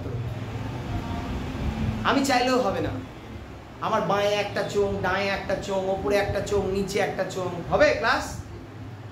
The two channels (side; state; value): both; identical; correlation 1.00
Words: তো। আমি চাইলেও হবে না। আমার বাঁয়ে একটা চোখ, ডাঁয়ে একটা চোখ, ওপরে একটা চোখ, নিচে একটা চোখ, হবে ক্লাস?